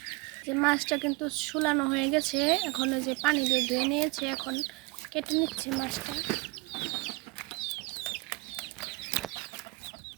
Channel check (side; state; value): left; quieter; 26.3 dB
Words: যে মাছটা কিন্তু ছুলানো হয়ে গেছে, এখন ওই যে পানি দিয়ে ধুয়ে নিয়েছে, এখন কেটে নিচ্ছে মাছটা।